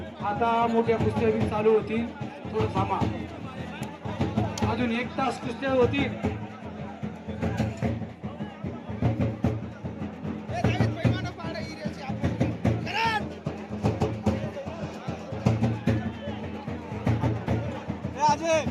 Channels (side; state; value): both; identical; correlation 1.00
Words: आता मोठ्या कुस्त्या बी चालू होती. थोडं थांबा. अजून 1 तास कुस्त्या होती.